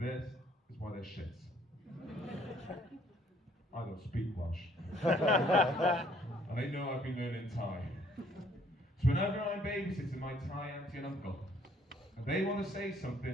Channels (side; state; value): both; normal; correlation 0.63